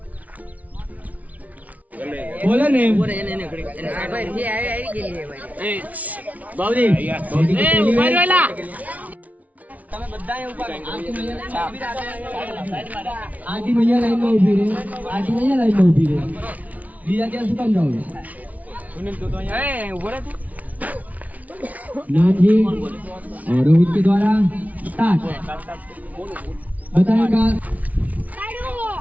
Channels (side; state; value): left; late; 0.071 ms